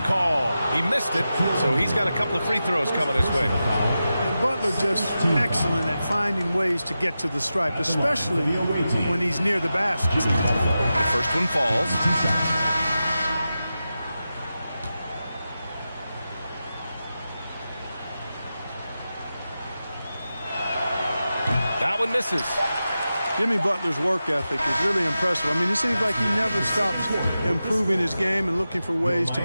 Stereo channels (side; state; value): both; inverted; correlation -0.92